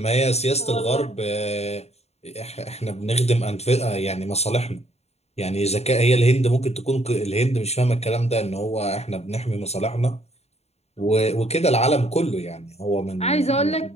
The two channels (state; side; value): late; right; 0.31 ms